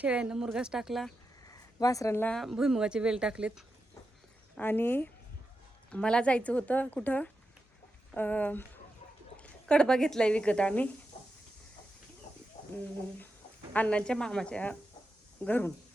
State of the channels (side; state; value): both; normal; correlation 0.88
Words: मुरघास टाकला, वासरांना भुईमुगाचे वेल टाकलेत. आणि मला जायचं होतं कुठं, कडबा घेतला आहे विकत आम्ही अण्णांच्या मामाच्या घरून.